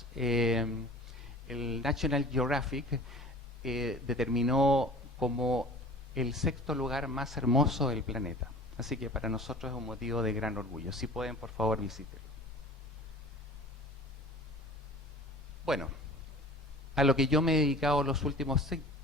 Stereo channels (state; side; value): normal; both; correlation 0.42